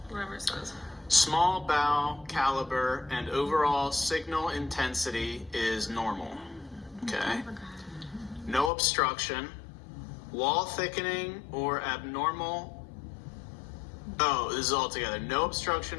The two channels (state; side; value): drops out; right; at 8.7 s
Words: Whatever it says. Small bowel caliber and overall signal intensity is normal. Okay. No obstruction, wall thickening or abnormal. Oh, this is all together. No